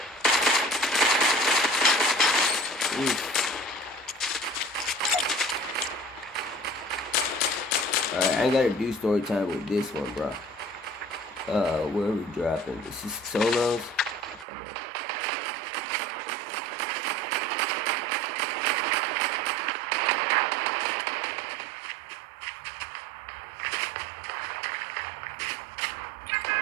Alright, I ain't gotta do story time with this one, bro. Where are we dropping? This is solos. Okay.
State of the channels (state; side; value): drops out; left; at 14.5 s